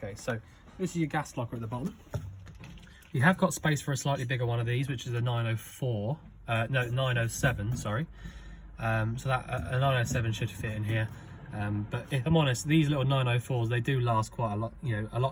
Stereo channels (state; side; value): identical; both; correlation 1.00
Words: so this is your gas locker at the bottom. You have got space for a slightly bigger one of these, which is a 904, no, 907, sorry. So that a 907 should fit in here. But if I'm honest, these little 904s, they do last quite a lot, you know, a